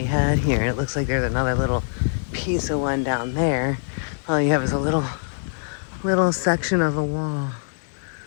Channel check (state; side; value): silent; right; digital silence